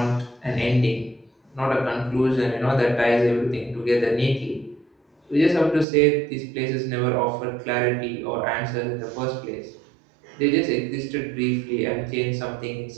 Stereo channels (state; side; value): drops out; left; at 5.9 s